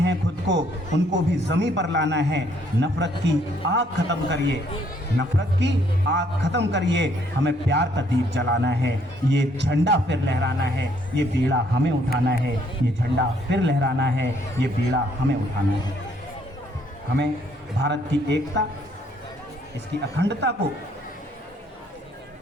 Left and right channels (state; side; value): normal; both; correlation 0.67